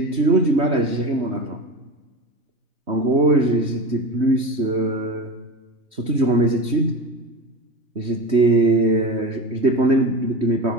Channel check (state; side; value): late; left; 3.2 ms